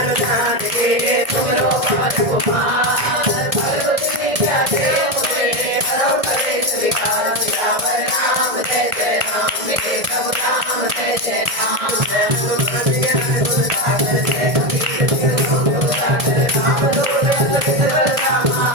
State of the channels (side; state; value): left; late; 1.8 ms